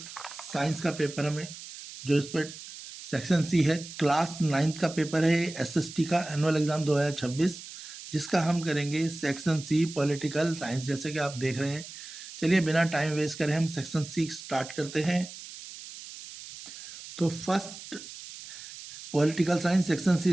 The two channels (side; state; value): right; noise; hiss, 13 dB below the sound